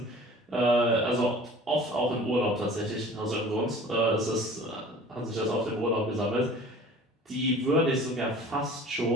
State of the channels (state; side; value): normal; both; correlation 0.45